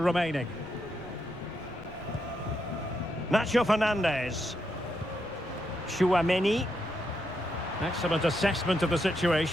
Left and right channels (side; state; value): left; noise; rumble, 20 dB below the sound